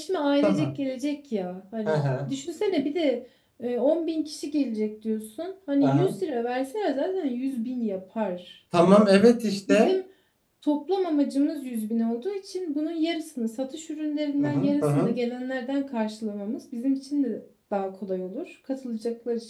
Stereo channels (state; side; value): identical; both; correlation 1.00